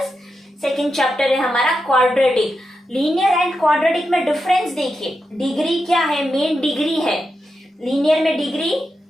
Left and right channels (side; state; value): both; normal; correlation 0.87